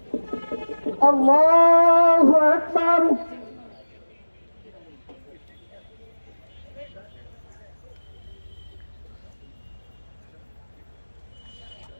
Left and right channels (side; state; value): both; inverted; correlation -1.00